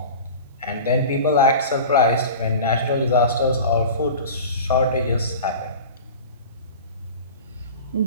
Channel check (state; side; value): inverted; both; correlation -0.35